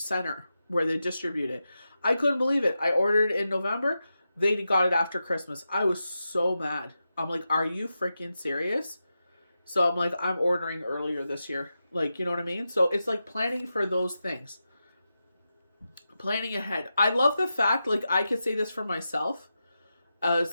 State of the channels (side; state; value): both; inverted; correlation -0.90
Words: where they distribute it. I couldn't believe it. I ordered it in November. They got it after Christmas. I was so mad. I'm like, are you freaking serious? So I'm like, I'm ordering earlier this year. You know what I mean? So it's like planning for those things. Planning ahead. I love the fact, I could say this for myself,